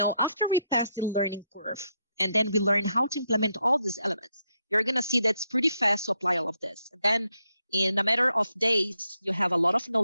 we pass the learning curve and then we learn how to implement all these elements, you're going to see that's pretty fast to apply all of this. And then in a matter of days, you have a lot of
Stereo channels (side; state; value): both; inverted; correlation -0.79